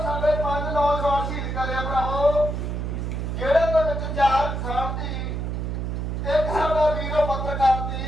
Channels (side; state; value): right; noise; hum, 3 dB below the sound